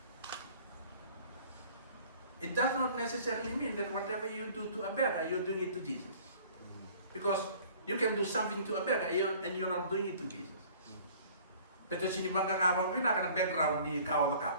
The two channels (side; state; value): both; inverted; correlation -0.50